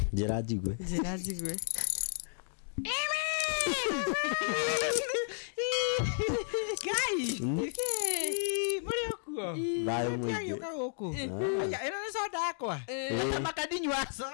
Njira njigwe. Guys. Muri okuo. Bayo mwingi. Yoka huko. Aya, ina soda yakwa. Hata makadinywa so.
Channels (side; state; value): right; silent; digital silence